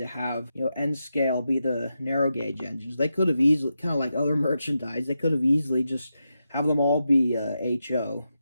have, Nscale be the narrow gauge engines. They could have easily, kind of like other merchandise, they could have easily just have them all be HO,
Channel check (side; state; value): both; inverted; correlation -0.87